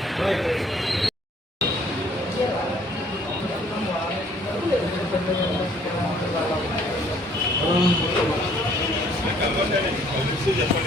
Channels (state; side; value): normal; both; correlation 0.60